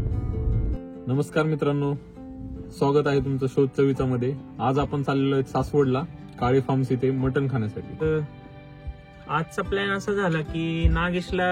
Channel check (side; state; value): both; identical; correlation 1.00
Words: नमस्कार मित्रांनो, स्वागत आहे तुमचं शोध चवीचा मध्ये. आज आपण चाललेलो आहे सासवडला काळे फार्म्स इथे मटण खाण्यासाठी. आजचा प्लॅन असा झाला की